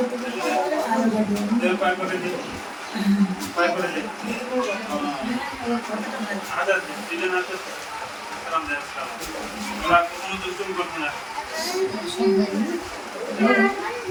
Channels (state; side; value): identical; both; correlation 1.00